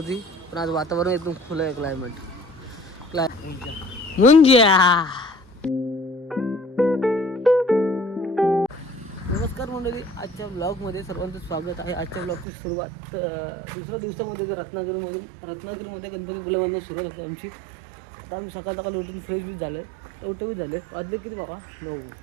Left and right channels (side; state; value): left; drops out; at 12.5 s